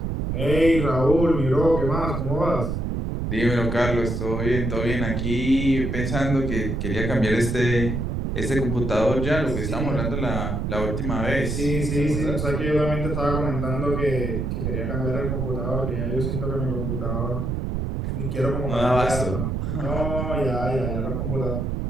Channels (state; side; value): noise; right; rumble, 2 dB below the sound